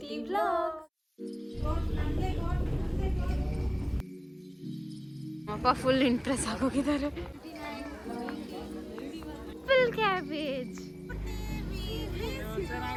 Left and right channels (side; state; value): both; identical; correlation 1.00